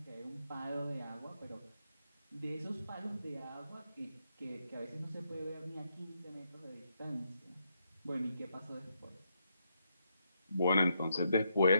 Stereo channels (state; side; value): inverted; both; correlation -0.79